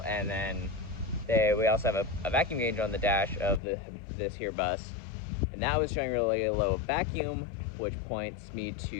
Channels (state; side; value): drops out; right; at 3.6 s